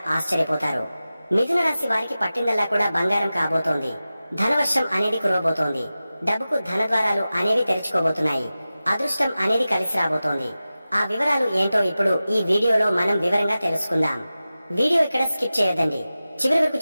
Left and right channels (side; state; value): both; inverted; correlation -0.95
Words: ఆశ్చర్యపోతారు। మిథున రాశి వారికి పట్టిందల్లా కూడా బంగారం కాబోతోంది। ధనవర్షం అనేది కురవబోతోంది। డబ్బుకు ధనద్వారాలు అనేవి తెరుచుకోబోతున్నాయి। అదృష్టం అనేది కలిసి రాబోతోంది। ఆ వివరాలు ఏంటో ఇప్పుడు ఈ వీడియోలో మనం వివరంగా తెలుసుకుందాం। వీడియో ఇక్కడ స్కిప్ చేయొద్దండి। చివరి వరకు